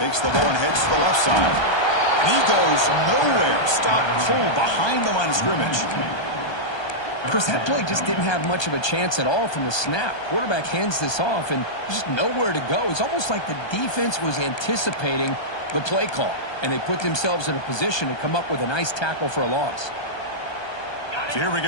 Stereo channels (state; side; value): late; right; 1.2 ms